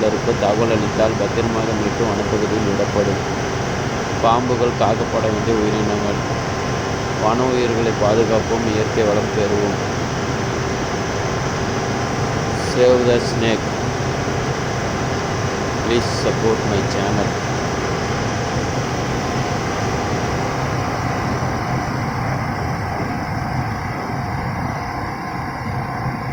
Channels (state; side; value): identical; both; correlation 1.00